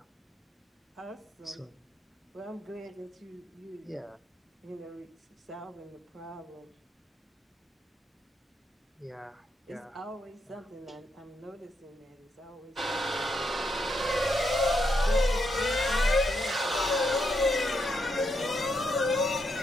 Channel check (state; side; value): normal; both; correlation 0.80